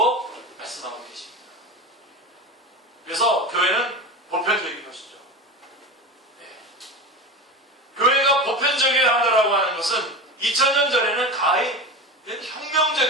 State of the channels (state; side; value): normal; both; correlation 0.26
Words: 말씀하고 계십니다. 그래서 교회는 보편적인 것이죠. 네. 교회가 보편적이어야 한다고 하는 것은 2000년 전에는 가히